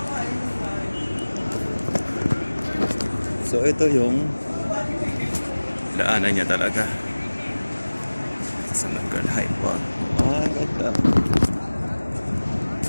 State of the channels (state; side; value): inverted; both; correlation -1.00